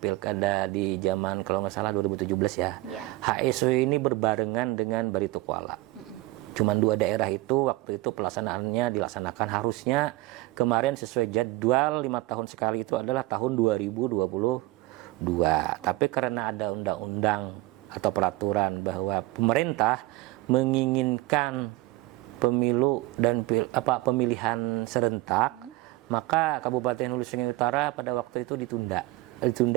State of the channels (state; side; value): quieter; left; 19.2 dB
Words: di zaman kalau nggak salah 2017 ya, HSU ini berbarengan dengan Barito Kuala. Cuman 2 daerah itu waktu itu pelaksanaannya dilaksanakan harusnya kemarin sesuai jadwal 5 tahun sekali itu adalah tahun 2022. Tapi karena ada undang-undang atau peraturan bahwa pemerintah menginginkan pemilu dan pemilihan serentak, maka Kabupaten Hulu Sungai Utara pada waktu itu ditunda.